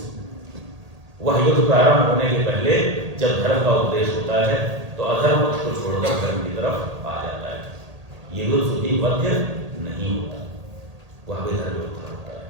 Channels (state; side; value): late; left; 1.8 ms